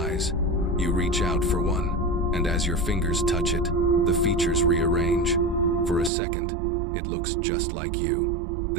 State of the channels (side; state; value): left; drops out; at 6.1 s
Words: You reach out for one, and as your fingers touch it, the features rearrange. For a second, it looks just like you.